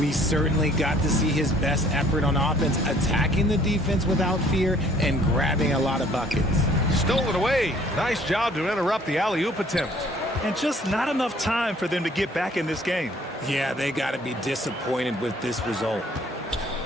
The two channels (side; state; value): both; normal; correlation 0.58